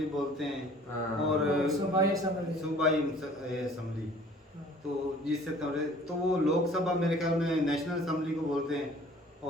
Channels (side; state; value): both; normal; correlation 0.51